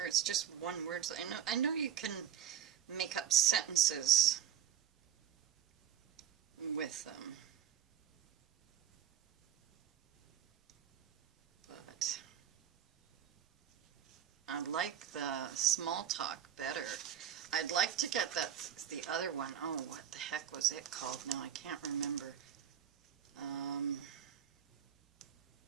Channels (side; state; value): left; quieter; 9.9 dB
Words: it's just one word. I know you can make up sentences with them, but I like the small talk better. I'd like to get the other one. Oh, what the heck was it called? Now I can't remember.